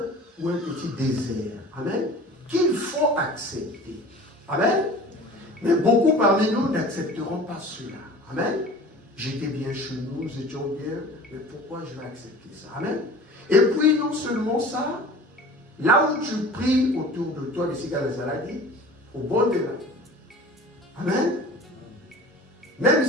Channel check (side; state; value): both; normal; correlation 0.41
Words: ou un petit désert. Amen. Qu'il faut accepter. Amen. Mais beaucoup parmi nous n'accepteront pas cela. Amen. J'étais bien chez nous, nous étions bien, mais pourquoi je vais accepter ça? Amen. Et puis, non seulement ça, là où tu pries autour de toi, les cigares Zaladi, au bord de là. Amen. Même